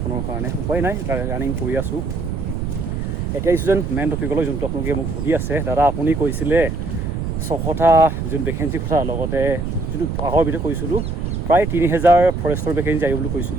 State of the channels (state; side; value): noise; right; rumble, 3 dB below the sound